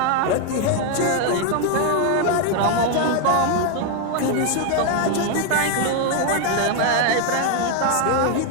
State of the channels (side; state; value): both; different; correlation 0.01